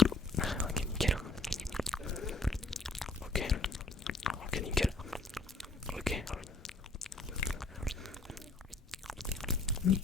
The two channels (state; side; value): quieter; right; 3.1 dB